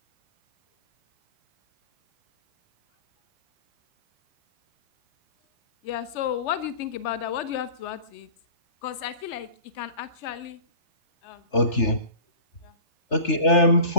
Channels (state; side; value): late; right; 3.3 ms